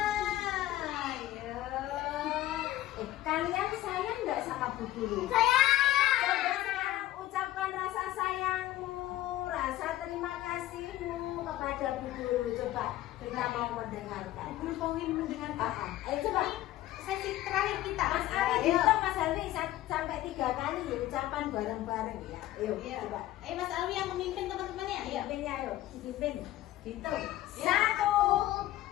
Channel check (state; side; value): quieter; right; 14.8 dB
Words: Ayo. Kalian sayang nggak sama Bu Guru? Sayang. Coba sekarang ucapkan rasa sayangmu, rasa terima kasihmu kepada Bu Guru. Coba kita mau mendengarkan. Guru pengen mendengarkan. Ayo coba. Sesi terakhir kita. Mas Ali, hitung Mas Ali sampai 3 kali ya, ucapan bareng-bareng ya. Ayo, Iya. coba. Ayo Mas Alwi yang memimpin teman-temannya. Ayo. Pimpinnya ayo, dipimpin. Hitung. Ya. 1.